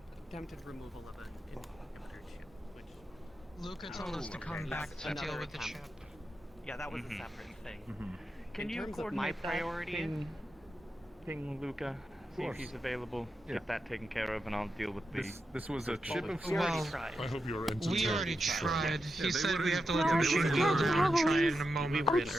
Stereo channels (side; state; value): both; normal; correlation 0.88